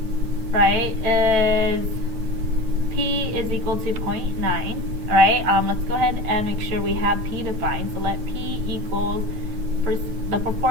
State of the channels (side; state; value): left; late; 9.2 ms